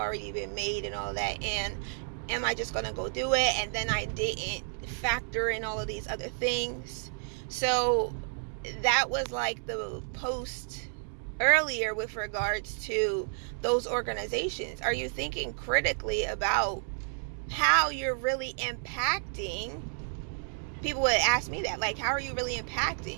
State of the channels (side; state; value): left; silent; 57 dB below the other